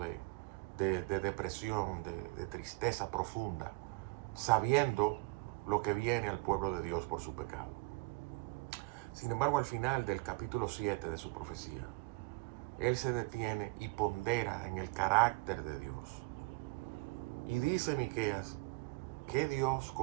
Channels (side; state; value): left; quieter; 25.5 dB